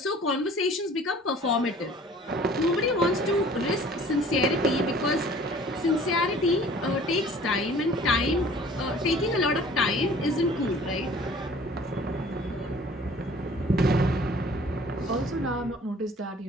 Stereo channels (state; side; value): normal; both; correlation 0.50